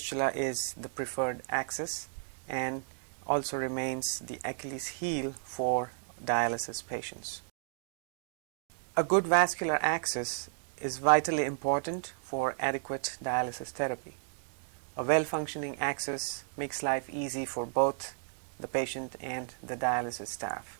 is the preferred axis and also remains the Achilles heel for dialysis patients. A good vascular axis is vitally important for adequate dialysis therapy. A well-functioning axis makes life easy for both the patient and the dialysis staff,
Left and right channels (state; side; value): silent; left; digital silence